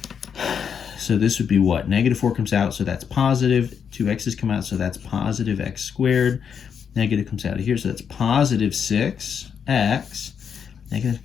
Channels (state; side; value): quieter; right; 7.3 dB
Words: So this would be what? Negative 4 comes out, so that's positive. 2x's come out, so that's positive x squared. Negative comes out of here, so that's positive 6x. Negative